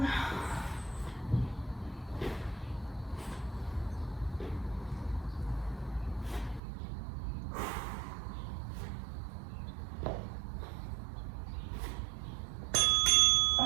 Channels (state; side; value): drops out; left; at 6.6 s